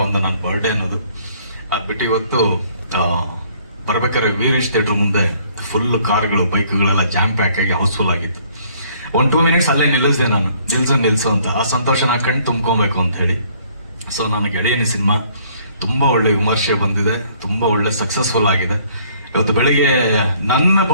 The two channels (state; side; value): inverted; both; correlation -0.61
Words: ಒಂದು ನನ್ನ ಬರ್ಡೇ ಅನ್ನೋದು. ಅದ್ಬಿಟ್ಟು ಇವತ್ತು ಬರ್ಬೇಕಾದ್ರೆ ವೀರೇಶ್ ಥಿಯೇಟರ್ ಮುಂದೆ ಫುಲ್ ಕಾರ್ಗಳು, ಬೈಕ್ಗಳೆಲ್ಲ ಜಾಮ್ ಪ್ಯಾಕ್ ಆಗಿ ಹೌಸ್ಫುಲ್ ಆಗಿತ್ತು. 1-2 ಮಿನಿಟ್ಸ್ ಅಲ್ಲೇ ನಿಲ್ಲಿಸಿದೆ ನಾನು. ನಿಲ್ಸು ಅಂತ ಆ ಸಂತೋಷ ನಾ ಕಣ್ಣು ತುಂಬ್ಕೊಬೇಕು ಅಂತ ಹೇಳಿ. ಸೊ ನನ್ನ ಗೆಳೆಯನಿ ಸಿನಿಮಾ ತುಂಬಾ ಒಳ್ಳೆ ವಿಮರ್ಶೆ ಬಂದಿದೆ, ತುಂಬಾ ಒಳ್ಳೆ ಸಕ್ಸಸ್ಫುಲ್ ಆಗಿದೆ. ಇವತ್ತು ಬೆಳಿಗ್ಗೆ ನನ್ನ